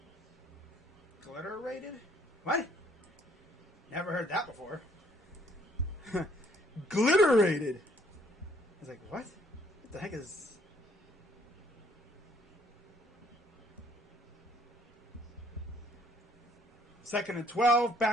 glitter rated? What? Never heard that before. Glitter rated! I was like, what? What the heck is. Second and 12,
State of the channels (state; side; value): normal; both; correlation 0.64